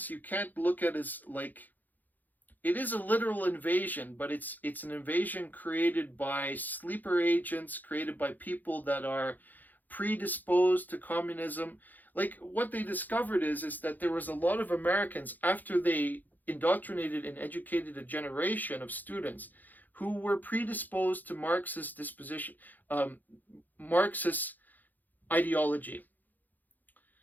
you can't look at it as like, it is a literal invasion, but it's an invasion created by sleeper agents, created by people that are predisposed to communism. Like, what they discovered is that there was a lot of Americans, after they indoctrinated and educated a generation of students who were predisposed to Marxist Marxist ideology.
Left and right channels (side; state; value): right; late; 0.084 ms